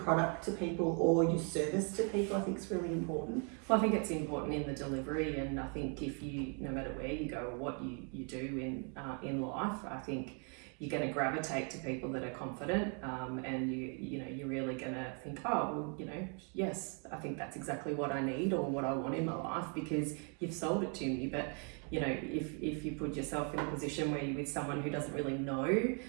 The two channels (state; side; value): quieter; left; 39.3 dB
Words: to people or your service to people, I think is really important. Well, I think it's important in the delivery, and I think if you, no matter where you go or what you do in life, I think you're going to gravitate to people that are confident, and you're really going to think, yes, I think that's exactly what I need or what I want in my life because you've sold it to me. But if you put yourself in a position where you're with someone who doesn't really know